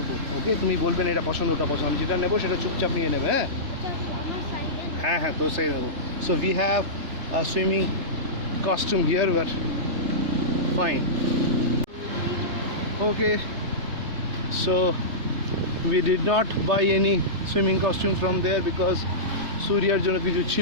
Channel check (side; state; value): left; late; 3.4 ms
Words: ওকে? তুমি বলবেন এটা পছন্দ ওটা পছন্দ, আমি যেটা নেবো সেটা চুপচাপ নিয়ে নেবো। হ্যাঁ হ্যাঁ হ্যাঁ, তোর সাইড নেবো। So we have a swimming costume here, but fine. Okay, so we did not buy any swimming costume from there because Suryaর জন্য কিছু